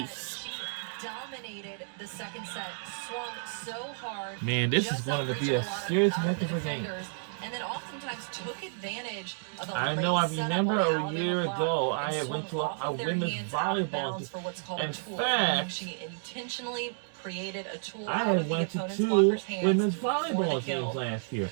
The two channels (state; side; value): silent; left; digital silence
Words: Dominated the second set, swung so hard. Man, this is going to be a serious heck of a game. And then oftentimes took advantage of the I know. I remember a year ago I went to a women's volleyball game. In fact, she intentionally created a tool. I went to 2 women's volleyball games last year.